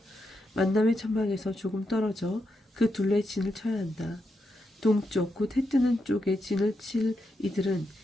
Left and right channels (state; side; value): normal; both; correlation 0.84